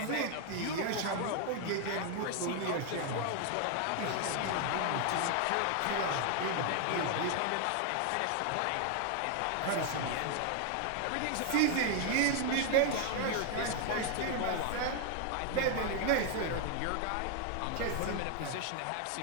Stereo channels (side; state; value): both; different; correlation 0.00